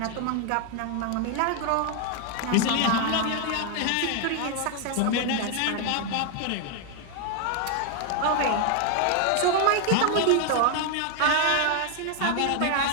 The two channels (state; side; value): different; both; correlation 0.00